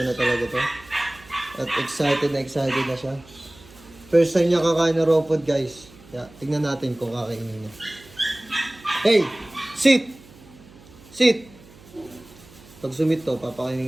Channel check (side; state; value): right; noise; hum, 23 dB below the sound